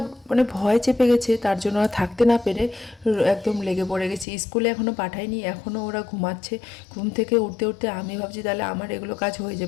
মানে ভয় চেপে গেছে, তার জন্য আর থাকতে না পেরে একদম লেগে পড়ে গেছি। স্কুলে এখনও পাঠাইনি, এখনও ওরা ঘুমাচ্ছে। ঘুম থেকে উঠতে উঠতে আমি ভাবছি তাহলে আমার এগুলো কাজ হয়ে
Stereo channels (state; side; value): drops out; right; at 4.2 s